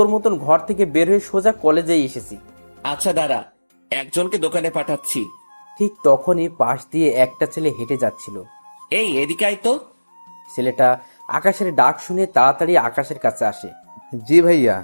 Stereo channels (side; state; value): both; inverted; correlation -1.00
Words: মতন ঘর থেকে বের হয়ে সোজা কলেজেই এসেছি। আচ্ছা দাঁড়া, একজনকে দোকানে পাঠাচ্ছি। ঠিক তখনই পাশ দিয়ে একটা ছেলে হেঁটে যাচ্ছিল। এই এদিকে আয় তো। ছেলেটা আকাশের ডাক শুনে তাড়াতাড়ি আকাশের কাছে আসে। জি ভাইয়া।